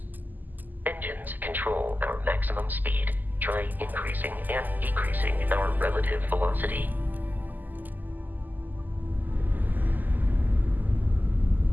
Engines control our maximum speed. Try increasing and decreasing our relative velocity.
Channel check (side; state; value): left; late; 0.085 ms